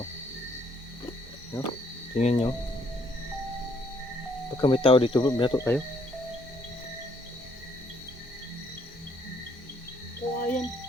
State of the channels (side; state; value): both; normal; correlation 0.68